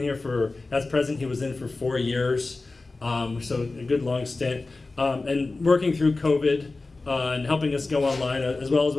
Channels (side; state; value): right; quieter; 3.4 dB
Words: as president, he was in for 4 years. So a good long stint. And working through COVID and helping us go online, as well as